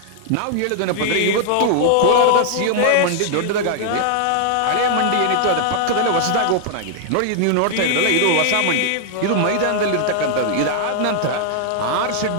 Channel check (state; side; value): different; both; correlation -0.01